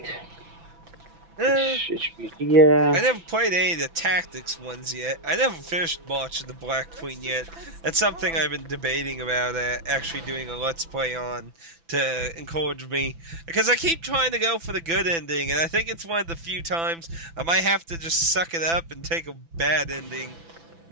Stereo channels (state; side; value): late; left; 6.0 ms